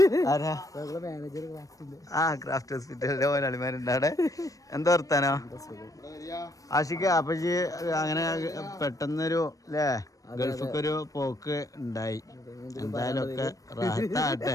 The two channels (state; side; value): late; right; 0.16 ms